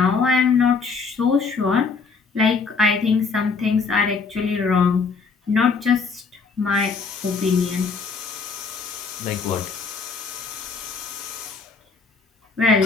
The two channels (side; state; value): right; quieter; 4.8 dB